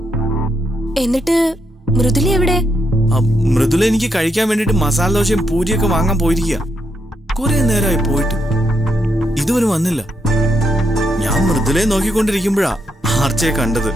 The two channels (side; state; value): both; normal; correlation 0.80